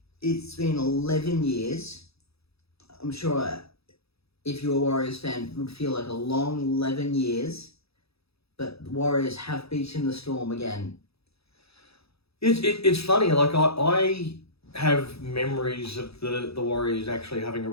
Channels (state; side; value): late; right; 0.78 ms